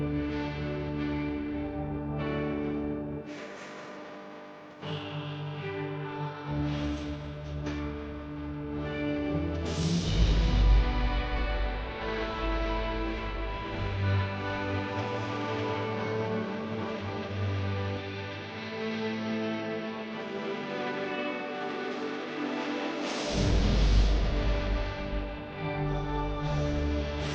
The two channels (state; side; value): identical; both; correlation 1.00